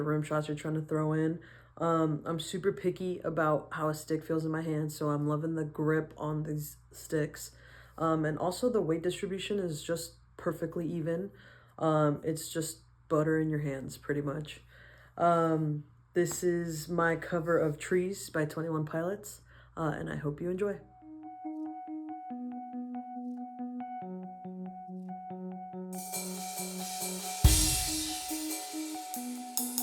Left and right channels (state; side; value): identical; both; correlation 1.00